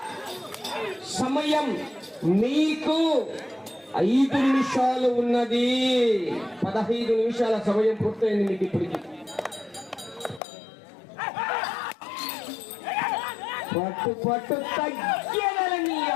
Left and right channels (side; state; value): right; drops out; at 10.4 s